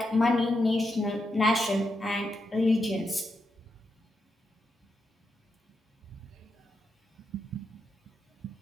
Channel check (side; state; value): both; normal; correlation 0.85